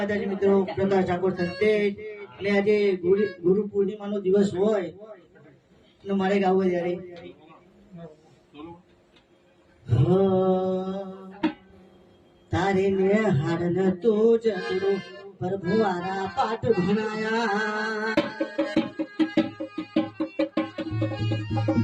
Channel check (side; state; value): both; identical; correlation 1.00